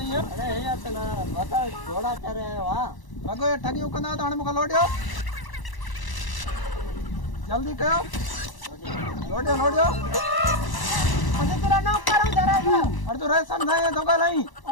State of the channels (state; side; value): late; right; 1.0 ms